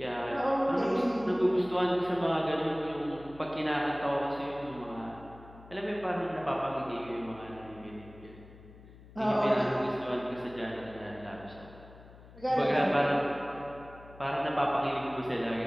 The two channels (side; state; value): left; noise; hum, 20 dB below the sound